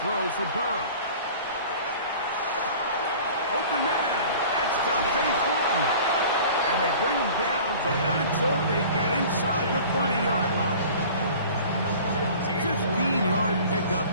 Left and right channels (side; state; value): both; inverted; correlation -0.44